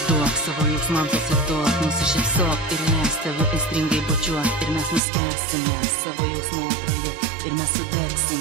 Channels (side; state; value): left; drops out; at 5.0 s